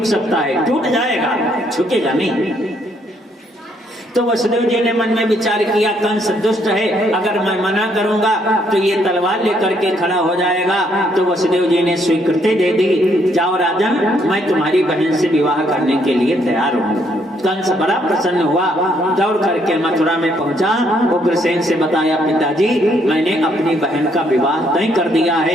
सकता है, टूट जाएगा, झुकेगा नहीं। तो वसुदेव जी ने मन में विचार किया, कंस दुष्ट है, अगर मैं मना करूंगा तो ये तलवार लेकर के खड़ा हो जाएगा। तो वसुदेव जी ने स्वीकृति दे दी, जाओ राजन, मैं तुम्हारी बहन से विवाह करने के लिए तैयार हूँ। कंस बड़ा प्रसन्न हुआ, दौड़ करके मथुरा में पहुंचा। उग्रसेन से बताया, पिताजी मैंने अपनी बहन का विवाह तय कर दिया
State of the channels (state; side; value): normal; both; correlation 0.70